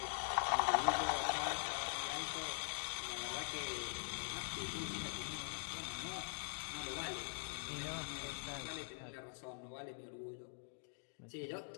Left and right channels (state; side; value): silent; right; digital silence